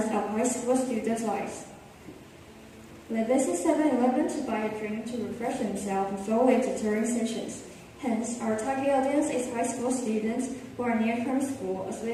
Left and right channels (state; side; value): identical; both; correlation 1.00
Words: high school students' lives. They visit 7-Eleven to buy a drink to refresh themselves before their tutoring sessions. Hence, our target audience is high school students who are near from school, as